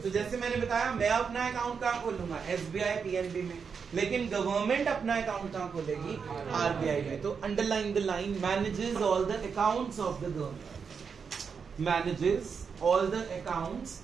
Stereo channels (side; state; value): left; quieter; 6.0 dB